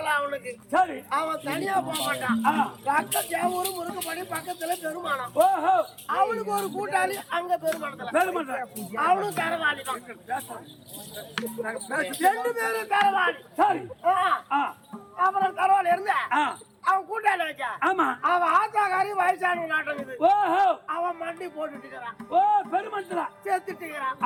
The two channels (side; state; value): both; identical; correlation 1.00